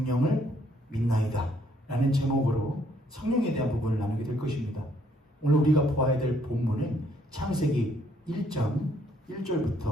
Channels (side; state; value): both; normal; correlation 0.68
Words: 믿나이다 라는 제목으로 성령에 대한 부분을 나누게 될 것입니다. 오늘 우리가 보아야 될 본문은 창세기 1장